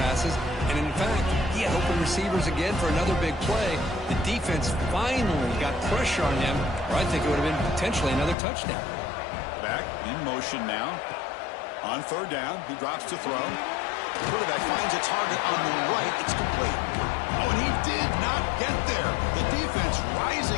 passes. And in fact, he had open receivers again for another big play. The defense finally got pressure on him, or I think it would have been potentially another touchdown. Back in motion now. On 3rd down, he drops to throw. The quarterback finds a target on the right. It's complete. Oh, and he did not get there. The defense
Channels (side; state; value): right; drops out; at 8.3 s